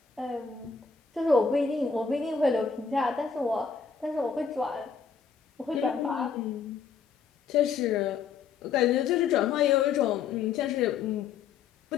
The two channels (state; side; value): quieter; right; 6.0 dB